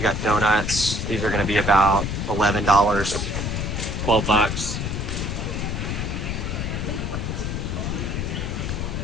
got donuts. These are going to be about $11, $12.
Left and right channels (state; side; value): noise; left; rumble, 3 dB below the sound